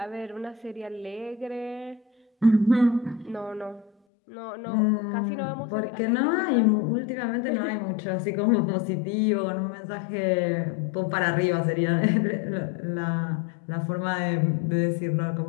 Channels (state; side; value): drops out; right; at 3.9 s